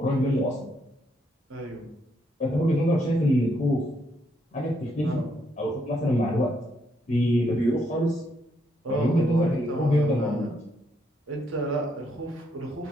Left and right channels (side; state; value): both; normal; correlation 0.75